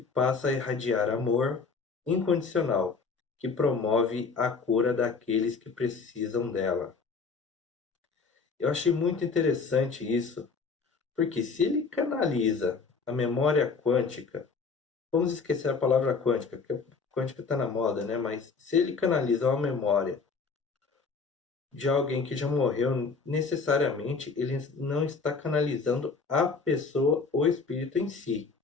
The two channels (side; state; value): right; quieter; 4.8 dB